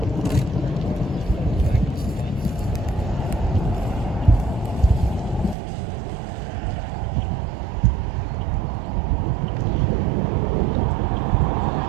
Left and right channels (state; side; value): drops out; left; at 5.6 s